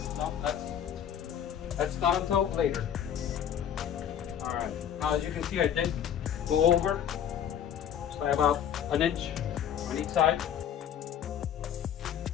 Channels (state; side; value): quieter; right; 9.3 dB